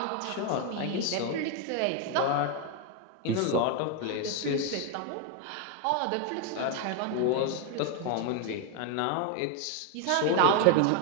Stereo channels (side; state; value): both; different; correlation 0.01